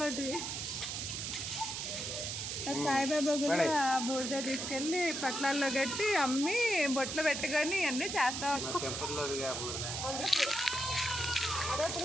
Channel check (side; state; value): right; noise; hiss, 4 dB below the sound